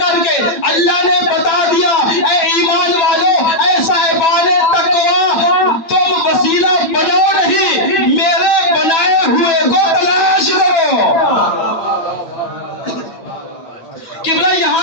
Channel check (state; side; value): late; right; 9.1 ms